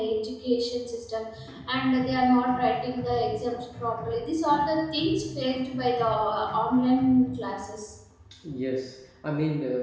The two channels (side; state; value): both; identical; correlation 1.00